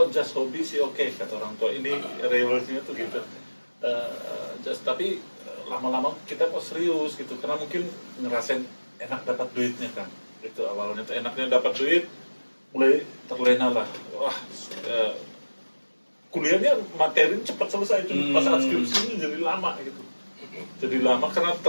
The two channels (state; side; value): inverted; both; correlation -1.00